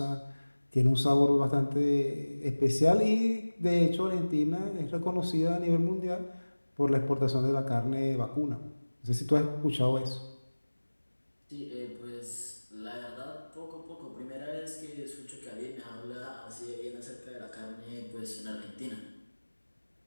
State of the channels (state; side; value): inverted; both; correlation -1.00